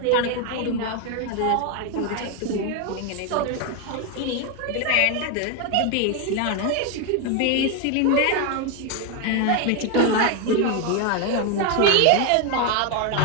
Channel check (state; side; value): different; both; correlation 0.01